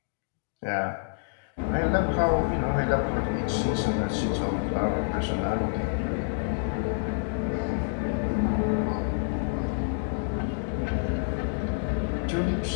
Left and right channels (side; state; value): right; silent; digital silence